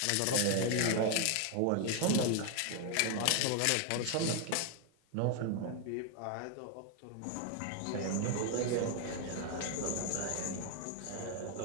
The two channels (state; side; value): different; both; correlation 0.01